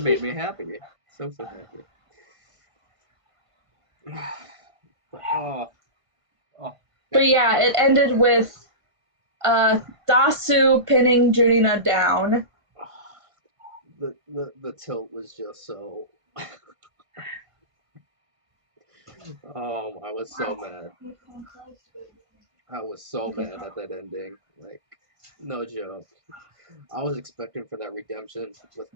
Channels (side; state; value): left; late; 1.5 ms